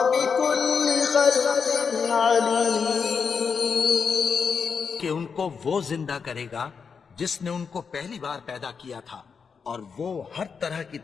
بكل خلق عليم۔ کہ ان کو وہ زندہ کرے گا جس نے ان کو پہلی بار پیدا کیا تھا اور وہ ہر طرح کی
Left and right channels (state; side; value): quieter; right; 5.9 dB